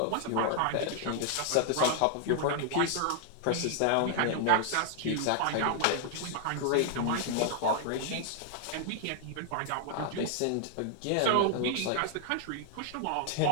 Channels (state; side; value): different; both; correlation 0.00